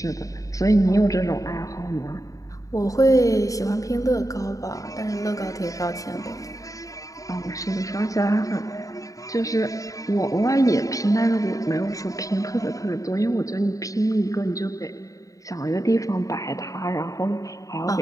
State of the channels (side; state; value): right; late; 0.16 ms